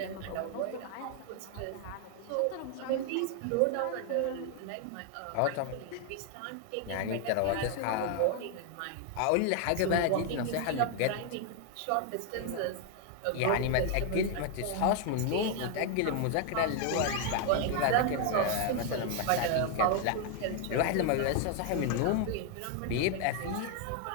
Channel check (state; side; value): different; both; correlation 0.00